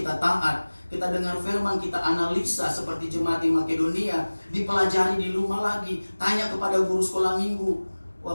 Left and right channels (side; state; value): both; inverted; correlation -1.00